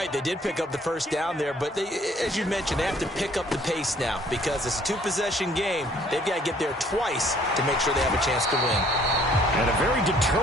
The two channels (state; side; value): normal; both; correlation 0.59